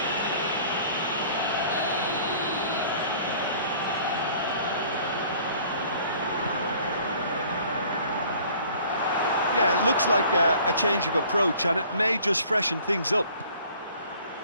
Yeah, it looks like a change of approach, and it may just freshen things up.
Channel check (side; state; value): both; inverted; correlation -0.53